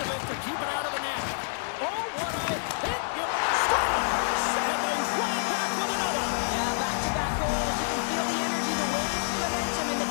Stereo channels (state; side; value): silent; right; digital silence